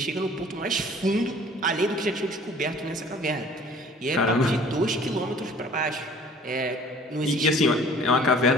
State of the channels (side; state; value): both; normal; correlation 0.50